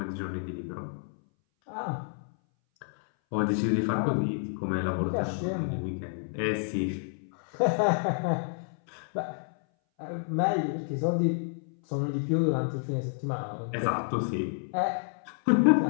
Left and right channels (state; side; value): silent; right; 58 dB below the other